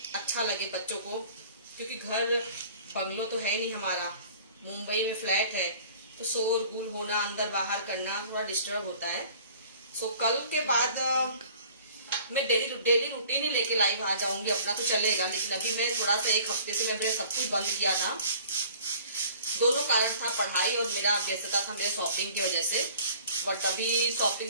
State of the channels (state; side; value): inverted; both; correlation -0.50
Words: अच्छा लगे बच्चों को, क्योंकि घर बंगलो तो है नहीं हमारा, मुंबई में फ्लैट है, तो शोर गुल होना, अंदर बाहर करना थोड़ा डिस्टर्ब होता है। सो कल के बाद मैं डेली रूटीन ही लेके लाइव आ जाऊंगी, अपना तो चलेगा। लेकिन अभी मैं थोड़ा सा एक हफ्ते से मैंने सब कुछ बंद किया था। दोनों कारण था, पढ़ाई और मेरा व्यस्तता था मेरे शॉपिंग की वजह से। बट अभी